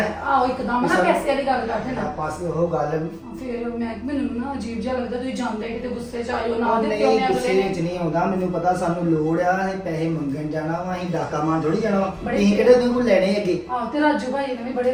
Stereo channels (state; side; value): identical; both; correlation 1.00